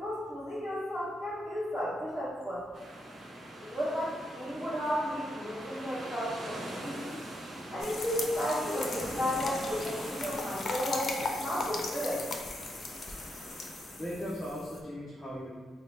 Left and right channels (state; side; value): normal; both; correlation 0.81